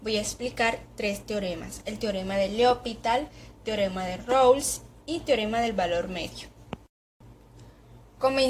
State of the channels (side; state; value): both; identical; correlation 1.00